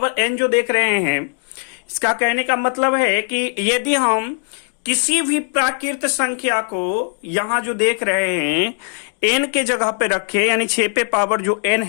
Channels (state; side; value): silent; right; 58 dB below the other